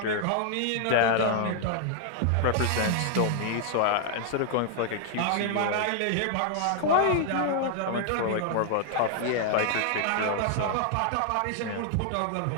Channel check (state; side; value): different; both; correlation 0.00